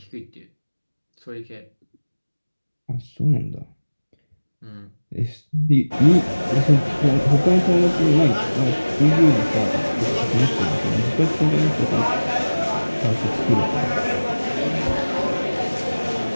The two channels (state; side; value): inverted; both; correlation -1.00